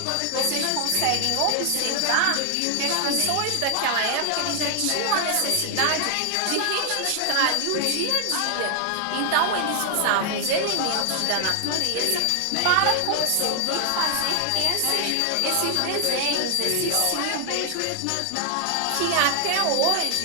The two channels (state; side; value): different; both; correlation 0.00